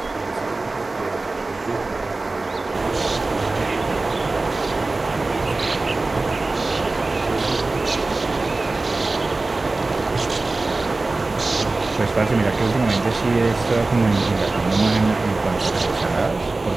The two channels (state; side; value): quieter; left; 3.3 dB